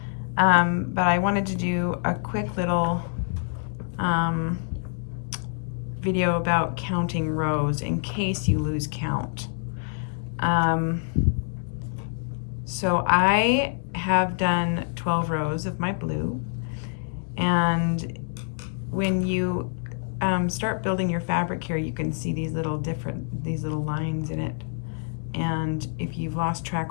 but I wanted to do a quick little video about counting rows in case you lose count. So I have done 12 rows of my blue, and when you start building your fabric here, you can see these little lines in it. And if you've lost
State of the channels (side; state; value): right; silent; 61 dB below the other